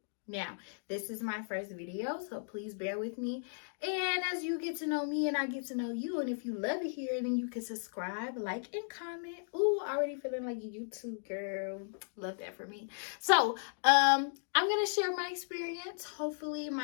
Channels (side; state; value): right; silent; digital silence